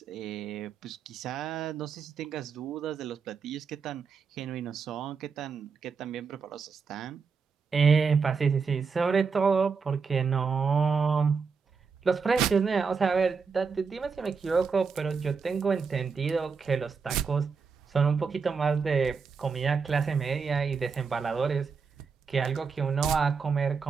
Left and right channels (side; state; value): left; quieter; 5.4 dB